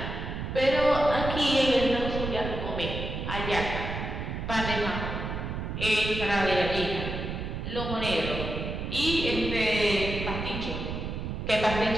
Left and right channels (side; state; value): right; noise; rumble, 5 dB below the sound